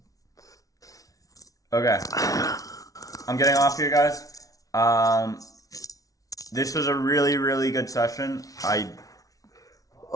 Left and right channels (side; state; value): right; late; 0.17 ms